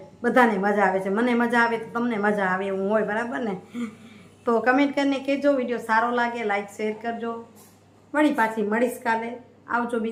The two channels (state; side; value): identical; both; correlation 1.00